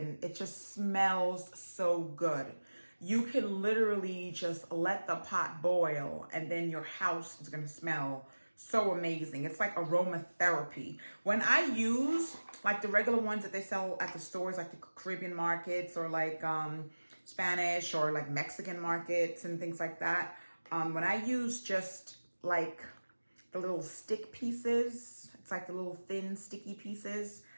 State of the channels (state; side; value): inverted; both; correlation -1.00